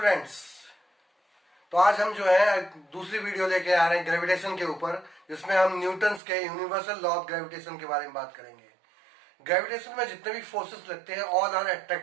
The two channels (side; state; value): left; drops out; at 6.2 s